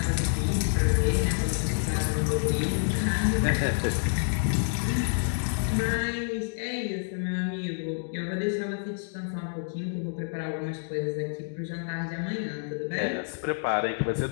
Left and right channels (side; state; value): right; silent; digital silence